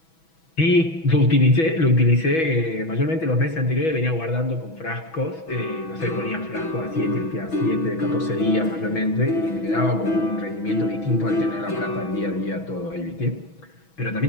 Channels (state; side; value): late; right; 6.1 ms